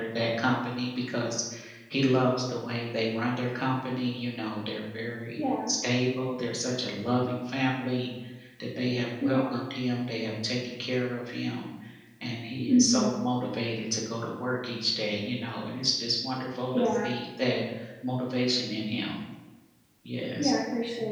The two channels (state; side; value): identical; both; correlation 1.00